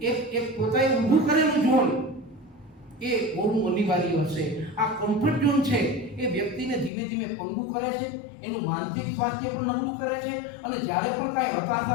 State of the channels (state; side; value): drops out; right; at 6.9 s